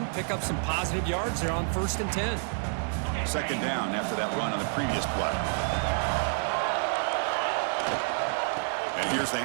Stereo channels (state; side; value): silent; left; 59 dB below the other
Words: pick up some positive yards there on 1st and 10. Second down after that run on the previous play. And here's the